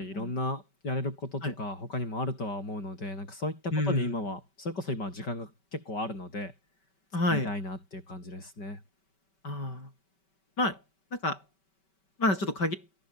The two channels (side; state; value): right; late; 5.2 ms